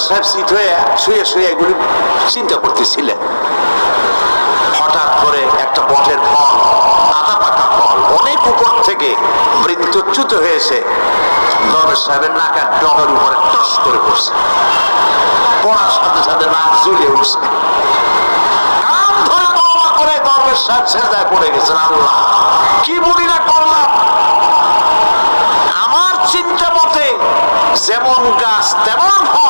সাহেব শীত হয়ে শুয়ে শুয়ে এগুলি চিন্তা করতেছিলেন। হঠাৎ করে একটা বটের ফল, আধা পাকা ফল, অনেক উপর থেকে বৃত্তচ্যুত হয়েছে দরবেশ সাহেবের নাকের ডগার উপরে টস করে পড়ছে। পড়ার সাথে সাথে নাক জ্বলে উঠছে, কান ধরে তওবা করে দরবেশ সাহেব সেজদায় পড়ে গেছেন। আল্লাহ কি বলি না করলাম, আমার চিন্তা মতে যেমন গাছ তেমন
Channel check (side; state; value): both; inverted; correlation -1.00